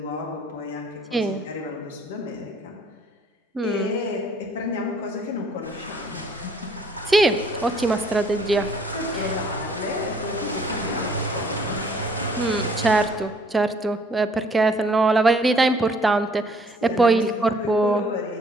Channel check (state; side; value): normal; both; correlation 0.60